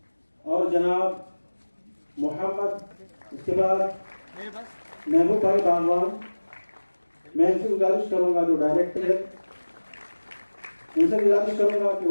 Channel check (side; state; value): both; inverted; correlation -1.00